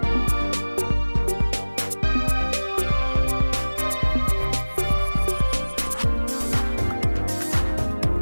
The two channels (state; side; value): inverted; both; correlation -1.00